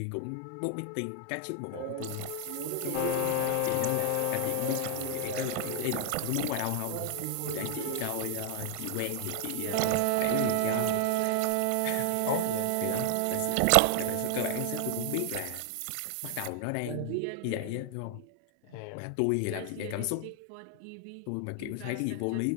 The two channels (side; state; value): both; different; correlation 0.00